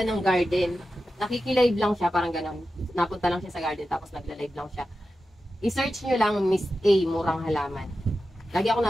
ng garden. Nakikilive lang siya, parang ganun. Napunta lang siya sa garden, tapos nagla-live lang siya. I-search nyo lang Miss A, Murang Halaman. Lagi ako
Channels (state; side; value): normal; both; correlation 0.92